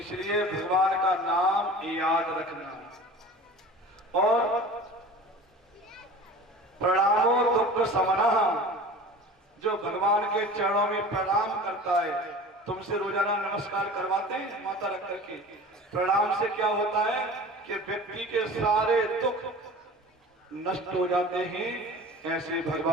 भगवान का नाम याद रखना। और प्रणामो दुख शमनः, जो भगवान के चरणों में प्रणाम करता है, तुमसे रोजाना नमस्कार करवाते हैं माता रख करके। प्रणाम से क्या होता है कि व्यक्ति के सारे दुख नष्ट हो जाते हैं। ऐसे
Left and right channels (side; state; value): both; normal; correlation 0.39